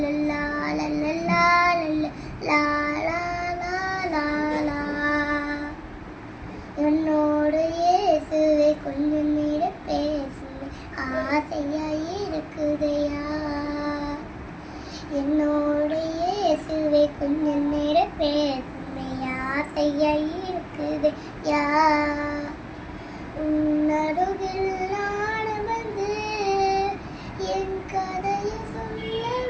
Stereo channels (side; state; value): both; identical; correlation 1.00